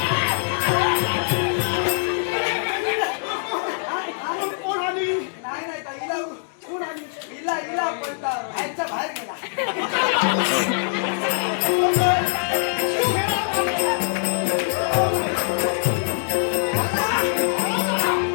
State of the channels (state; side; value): silent; right; 63 dB below the other